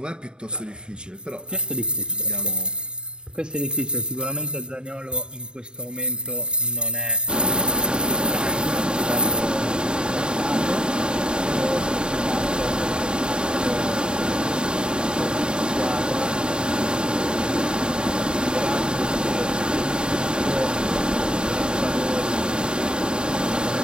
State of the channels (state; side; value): late; left; 0.049 ms